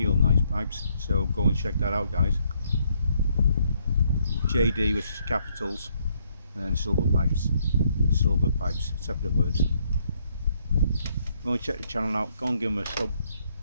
nice pipes, so go and check that out, guys. JD with capitals, and then silver pipes, separate words. Go and check the channel out, go and give him a sub,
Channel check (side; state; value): both; inverted; correlation -0.71